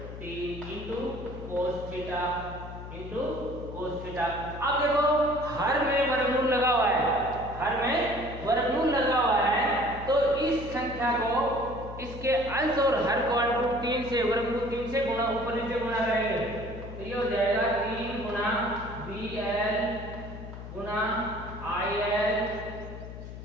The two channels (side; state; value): left; noise; hum, 11 dB below the sound